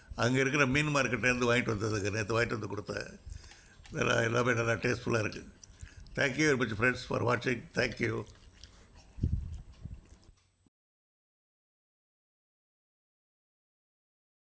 அங்கே இருக்கிற மீன் மார்க்கெட்லேருந்து வாங்கிட்டு வந்ததுக்கு நேற்று வாங்கிட்டு வந்து கொடுத்தேன். எல்லாமே நல்லா டேஸ்ட்ஃபுல்லாக இருக்குது. Thank you very much friends for வாட்சிங். தேங்க்யூ.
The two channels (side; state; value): both; identical; correlation 1.00